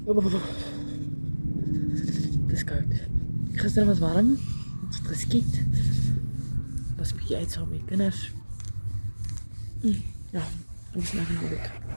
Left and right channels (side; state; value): both; inverted; correlation -1.00